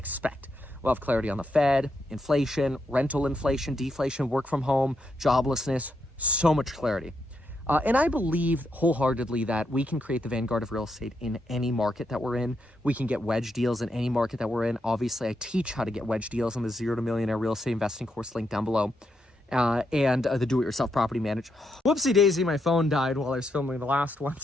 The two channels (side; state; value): both; normal; correlation 0.81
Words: We'll have clarity on the Fed, inflation, rental inflation, deflation, work from home, joblessness, so much clarity. And I believe wholeheartedly that we can create the vanguard of real estate in any market that we're in. We can get wedge deals in any market that we're in. Obviously, I teach how to get wedge deals on the 0 to Millionaire Real Estate Investing course link down below. And the do-it-yourself property manager. Whoopsie daisy, my phone died while I was filming the last one,